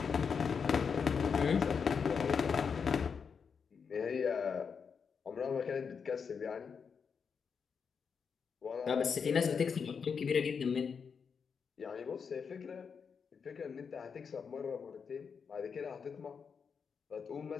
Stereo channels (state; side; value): quieter; right; 6.1 dB